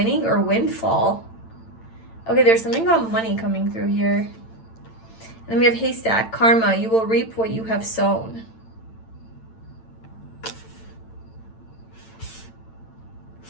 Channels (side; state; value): right; late; 8.9 ms